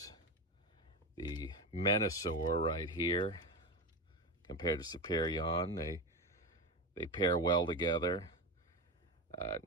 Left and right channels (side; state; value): both; normal; correlation 0.19